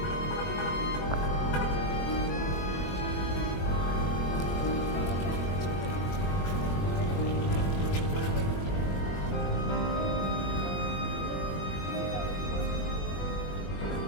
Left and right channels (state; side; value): late; right; 21 ms